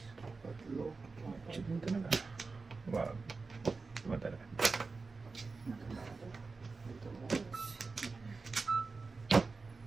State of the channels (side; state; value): left; quieter; 4.2 dB